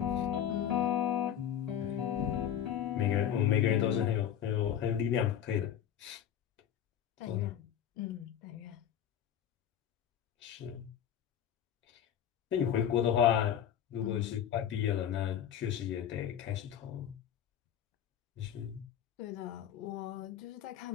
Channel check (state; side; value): quieter; right; 9.7 dB